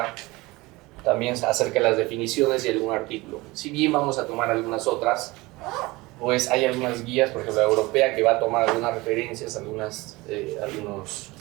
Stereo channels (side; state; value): left; quieter; 21.8 dB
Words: también acerca de las definiciones y algún artículo. Si bien vamos a tomar algunas otras, pues hay algunas guías, por ejemplo la europea, que va a tomar algunas referencias, algunos